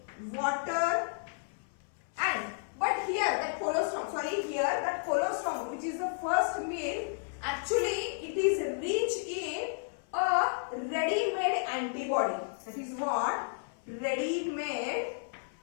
water. And but here that colostrum, which is the first milk, actually it is rich in a ready-made antibody. That is what? Ready-made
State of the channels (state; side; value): silent; right; 56 dB below the other